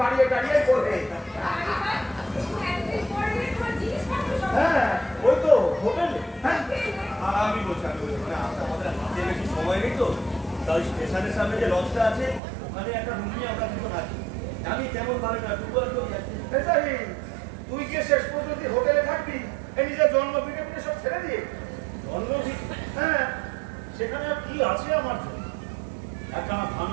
করবে। হ্যাঁ ওই তো হোটেলে। হ্যাঁ আমি বলছি মানে আমাদের হাতে বেশি সময় নেই তো, তাই স্টেশনের সামনে যে লজটা আছে ওখানে একটা রুম নিয়ে আমরা দুটো থাকি। আমি তেমন ভালো না, দুবার কেউ যাচ্ছি। জাহির তুই গিয়ে শেষ পর্যন্ত হোটেলে থাকবি এই নিজের জন্মভিটে সব ছেড়ে দিয়ে? জন্মভিট? হ্যাঁ সেখানে আর কি আছে আমার জন্য? একটা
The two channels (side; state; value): left; drops out; at 12.4 s